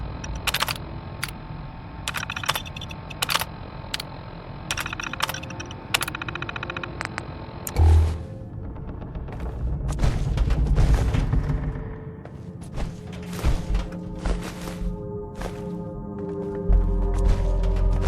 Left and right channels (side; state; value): both; identical; correlation 1.00